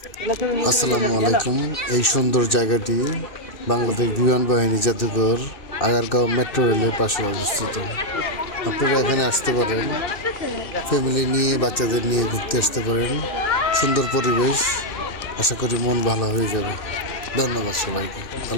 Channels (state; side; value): late; right; 2.6 ms